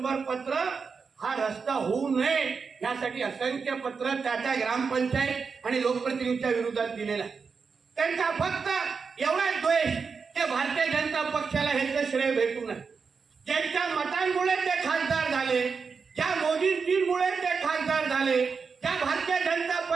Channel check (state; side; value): quieter; left; 5.3 dB